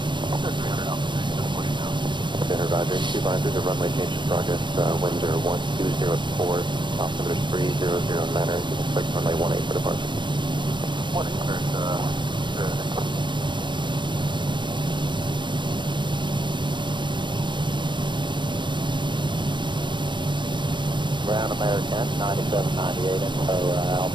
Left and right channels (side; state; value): left; late; 0.22 ms